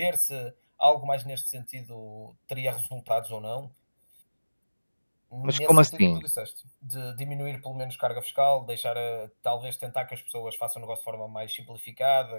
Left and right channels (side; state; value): both; inverted; correlation -1.00